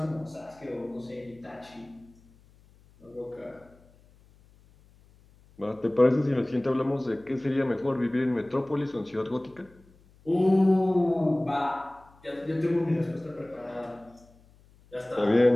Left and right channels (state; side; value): noise; left; hum, 28 dB below the sound